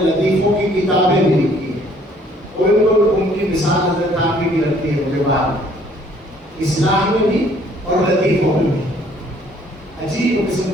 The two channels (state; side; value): normal; both; correlation 0.60